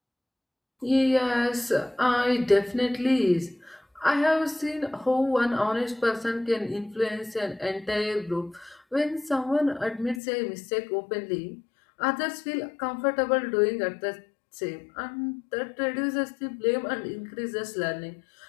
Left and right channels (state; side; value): drops out; right; at 10.2 s